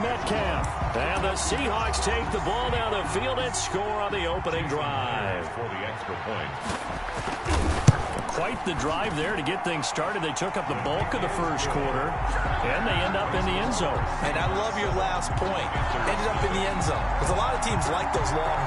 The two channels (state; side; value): identical; both; correlation 1.00